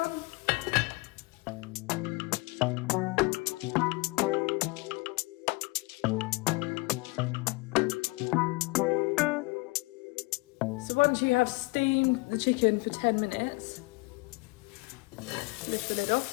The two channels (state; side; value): quieter; right; 25.3 dB